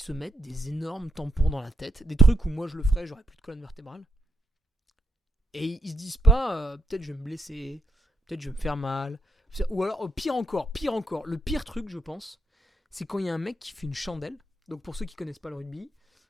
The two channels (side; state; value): both; normal; correlation 0.79